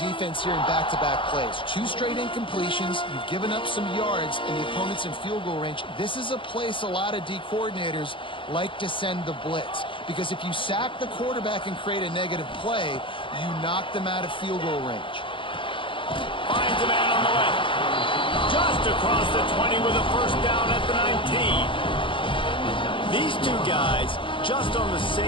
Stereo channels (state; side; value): late; right; 0.25 ms